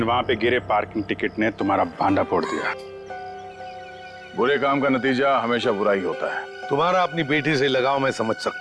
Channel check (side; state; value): both; identical; correlation 1.00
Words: वहां पे गिरे पार्किंग टिकट ने तुम्हारा भांडा फोड़ दिया। बुरे काम का नतीजा हमेशा बुरा ही होता है। तुम्हारा अपनी बेटी से लगाव मैं समझ